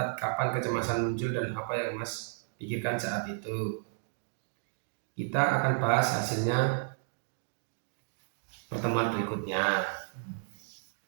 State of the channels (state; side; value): silent; left; digital silence